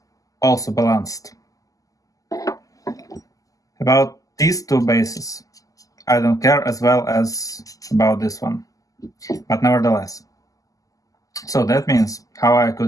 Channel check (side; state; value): right; late; 0.17 ms